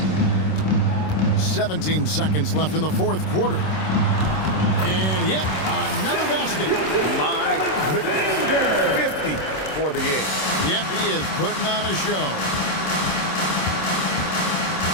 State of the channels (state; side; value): late; right; 26 ms